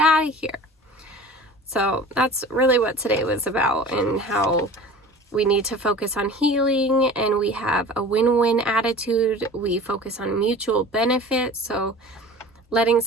of here. So that's really what today was about, and how we need to focus on healing, and we have a win-win attitude. We focus on mutual benefit. So letting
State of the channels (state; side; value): normal; both; correlation 0.41